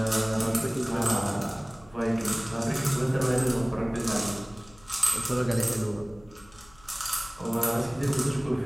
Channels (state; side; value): noise; left; hum, 26 dB below the sound